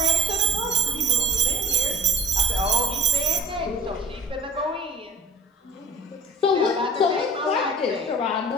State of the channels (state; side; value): normal; both; correlation 0.40